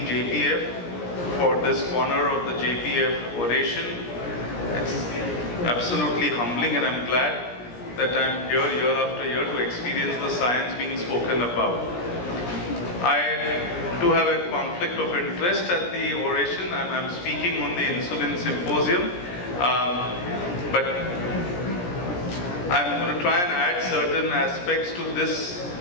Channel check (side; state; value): right; late; 17 ms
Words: JPF for this honor of the JPF oration. It's absolutely humbling, and I'm glad that I'm here year after year to experience the science being spoken about. I do have a conflict of interest at the oration. I'm speaking on the insulin symposium, but I'm going to try and add certain aspects to this